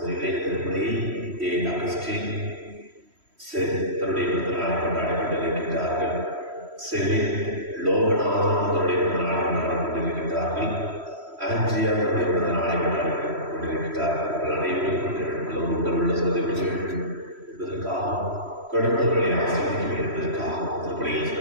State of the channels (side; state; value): left; late; 3.1 ms